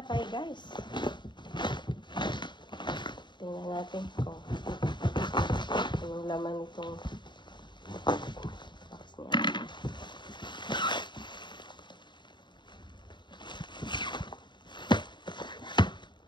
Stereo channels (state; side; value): late; right; 0.22 ms